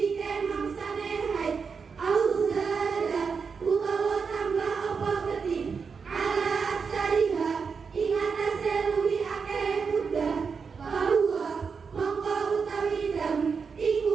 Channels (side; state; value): left; quieter; 5.6 dB